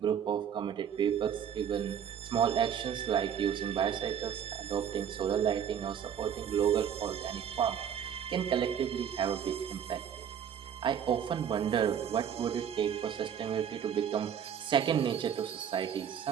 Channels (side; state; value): left; quieter; 8.5 dB